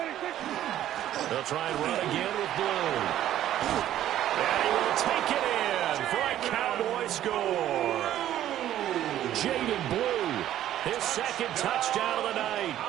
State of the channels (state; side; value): quieter; left; 12.2 dB